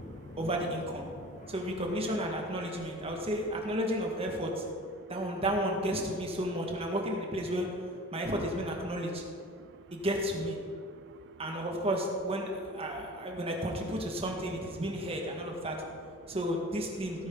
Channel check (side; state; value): both; normal; correlation 0.41